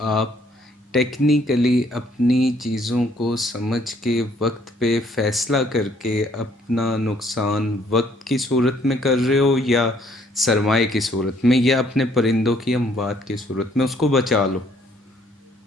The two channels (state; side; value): normal; both; correlation 0.64